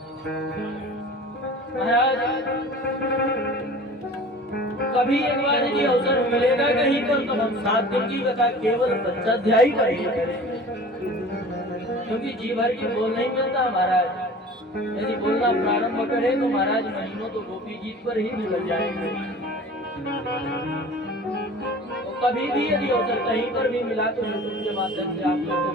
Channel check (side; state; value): both; normal; correlation 0.41